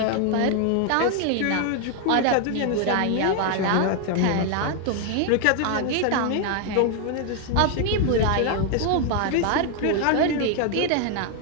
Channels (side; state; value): both; different; correlation 0.00